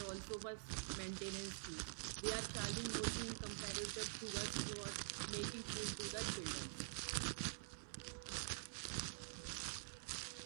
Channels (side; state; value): left; silent; digital silence